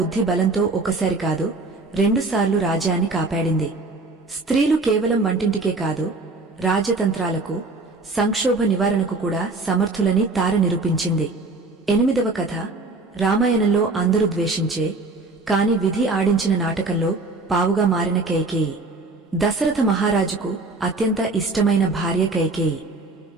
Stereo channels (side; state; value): left; quieter; 3.4 dB